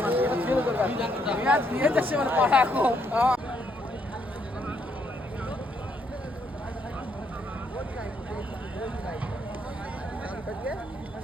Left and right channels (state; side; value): normal; both; correlation 0.73